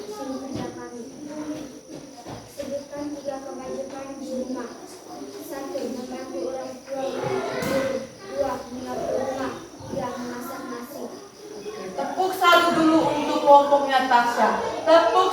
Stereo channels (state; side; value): identical; both; correlation 1.00